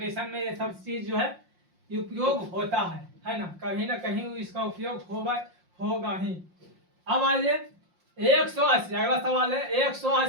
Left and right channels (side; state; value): left; late; 5.6 ms